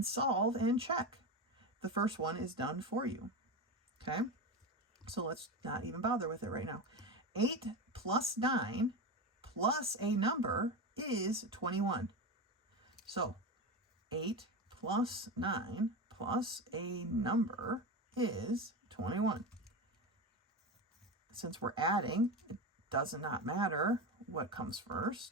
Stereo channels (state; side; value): normal; both; correlation 0.20